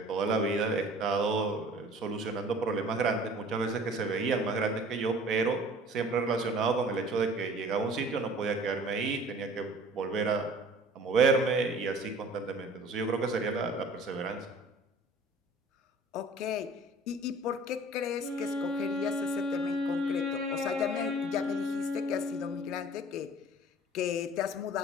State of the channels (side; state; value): both; normal; correlation 0.48